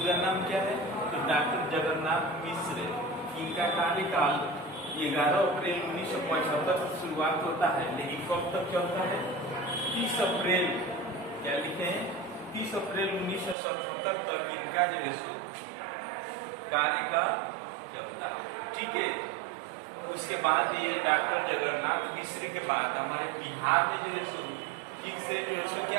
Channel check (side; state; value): left; drops out; at 13.6 s